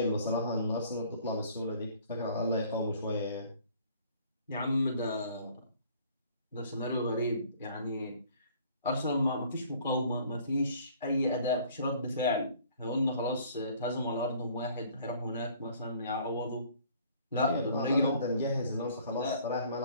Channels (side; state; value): both; inverted; correlation -0.56